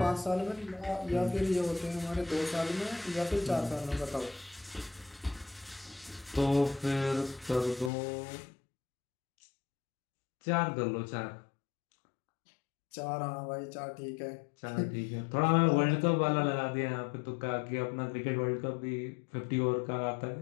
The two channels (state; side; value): drops out; right; at 7.9 s